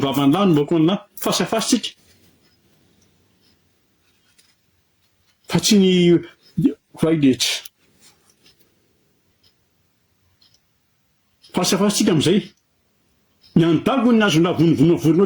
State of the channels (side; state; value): both; identical; correlation 1.00